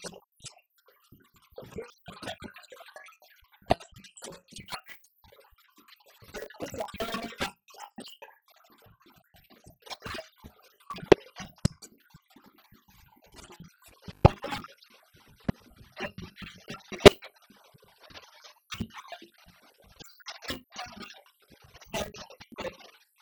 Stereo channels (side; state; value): both; identical; correlation 1.00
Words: easy place to be. If you're dreaming of becoming an entrepreneur and so on and so forth, you must know that this environment has been hostile to people who have been in business. So if you've been forewarned, then you know how to behave, that you must behave well, just in case someone decides that they don't like you,